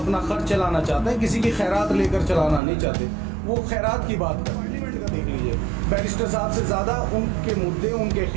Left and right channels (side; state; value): left; drops out; at 2.6 s